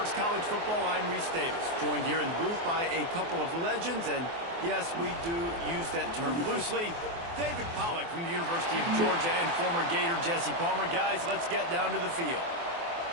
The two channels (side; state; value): left; late; 24 ms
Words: College Football, I'm Reese Davis, joined here in the booth by a couple of legends, and yes, we do use that term loosely. David Pollack from the University of Georgia and former Gator Jesse Palmer. Guys, let's get down to the field.